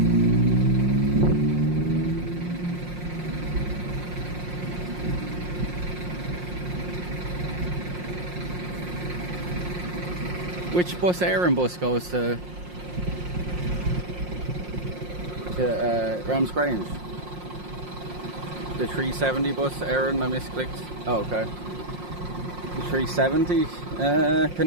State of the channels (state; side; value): late; left; 5.6 ms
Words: Which bus, Aaron bus, goes to Rams Grange? The 370 bus, Aaron, I misclicked. Oh, okay. The 370.